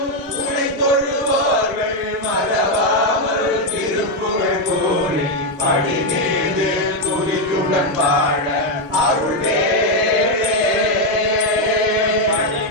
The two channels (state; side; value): normal; both; correlation 0.03